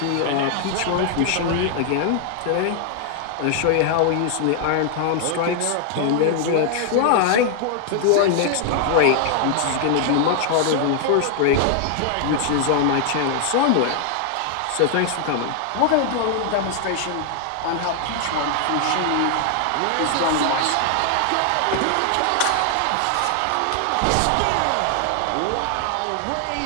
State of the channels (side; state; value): both; different; correlation 0.00